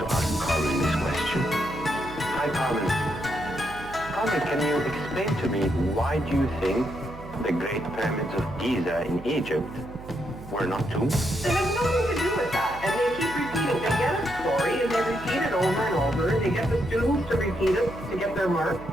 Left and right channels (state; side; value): noise; right; hum, 15 dB below the sound